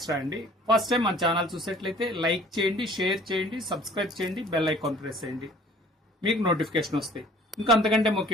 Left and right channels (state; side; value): normal; both; correlation 0.52